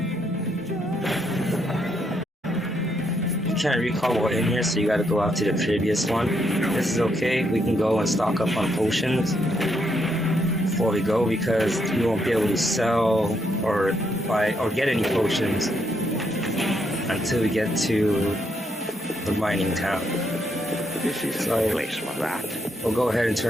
You can't recall what in here, so you gotta go out to the previous one. This is okay. We can go and stock up on potions before we go because we won't be able to sell or buy or get any potions until we get to the mining town. This isn't the place for that. We'll go ahead and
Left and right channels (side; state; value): both; normal; correlation 0.76